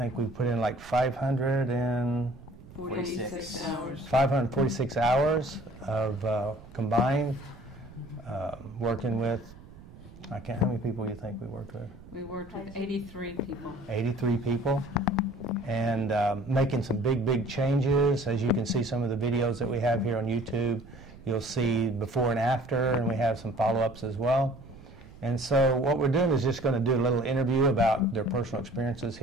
we put in like 546 hours. 546 hours of combined working with. How many people do you think we worked with? We worked with 83 people. 83 people. And making some big changes. As you can see some of the videos that we have here on YouTube, you'll see before and after, and we have some follow-ups as well. And so what we're doing is just going to do a little interview about their personal experiences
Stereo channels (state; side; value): noise; right; rumble, 19 dB below the sound